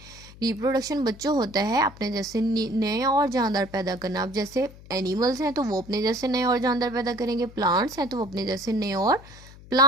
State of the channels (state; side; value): noise; left; hum, 19 dB below the sound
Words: रिप्रोडक्शन बच्चों होता है अपने जैसे नए और जानदार पैदा करना। अब जैसे एनिमल्स हैं तो वो अपने जैसे नए और जानदार पैदा करेंगे, प्लांट्स हैं तो वो अपने जैसे नए और